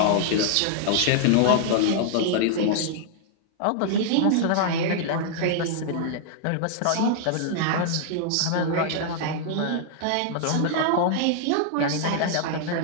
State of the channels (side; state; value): both; different; correlation -0.01